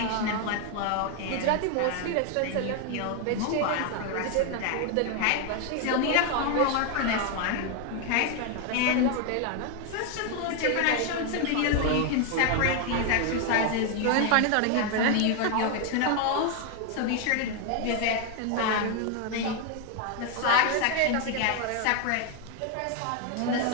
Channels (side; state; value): both; different; correlation 0.01